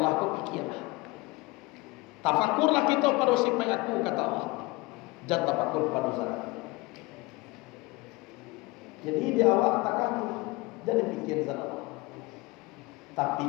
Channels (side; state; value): right; quieter; 23.1 dB